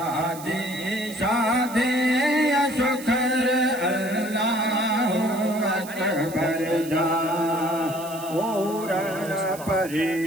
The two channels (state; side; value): noise; right; hiss, 15 dB below the sound